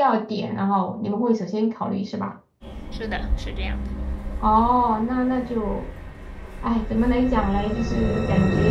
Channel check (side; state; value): both; identical; correlation 1.00